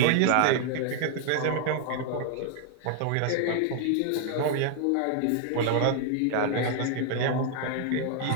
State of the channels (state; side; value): different; both; correlation 0.00